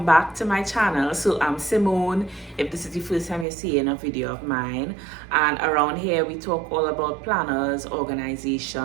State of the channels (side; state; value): left; drops out; at 3.5 s